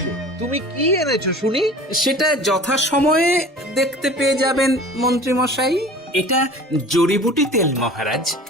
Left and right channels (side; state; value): both; normal; correlation 0.42